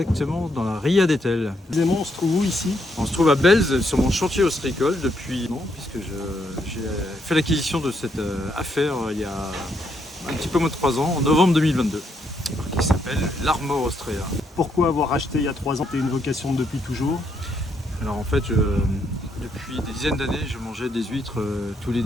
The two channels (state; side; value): normal; both; correlation 0.76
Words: dans la Ria d'Etel. Précisément, on se trouve où ici? On se trouve à Belz sur mon chantier ostréicole depuis un an puisque j'ai fait l'acquisition de cette affaire il y a un petit peu moins de 3 ans, en novembre 2022, qui s'appelle l'Armor Austrea. Pourquoi avoir racheté il y a 3 ans? T'es une vocation depuis toujours? Alors en fait, depuis des dizaines d'années, je mangeais des huîtres tous les